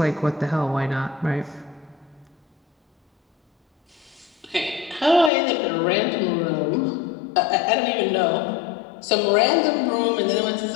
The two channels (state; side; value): drops out; right; at 5.3 s